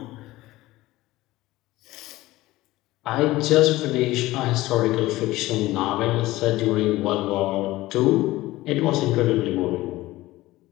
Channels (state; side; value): quieter; right; 17.8 dB